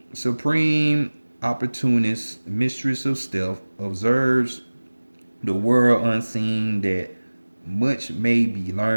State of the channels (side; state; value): both; inverted; correlation -1.00